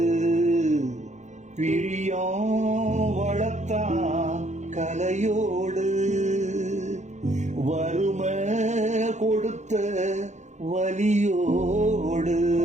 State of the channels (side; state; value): left; late; 0.34 ms